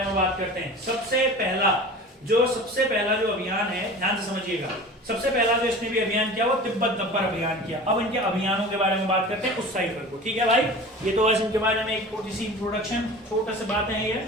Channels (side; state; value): both; normal; correlation 0.38